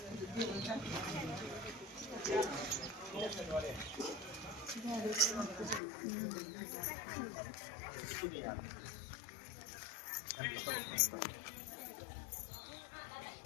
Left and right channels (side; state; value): right; drops out; at 5.8 s